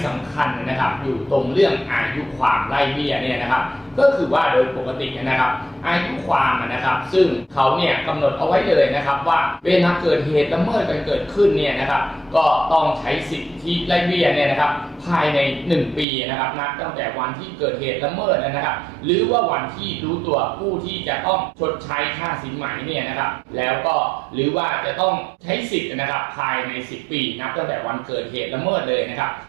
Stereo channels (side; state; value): left; drops out; at 16.1 s